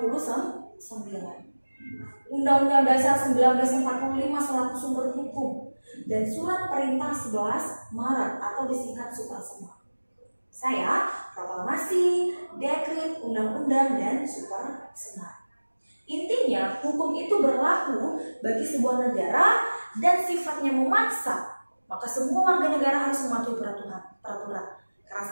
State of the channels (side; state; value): both; inverted; correlation -1.00